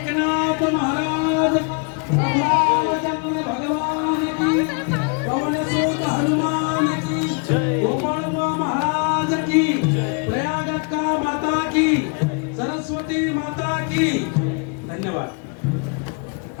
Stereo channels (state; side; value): quieter; right; 36.2 dB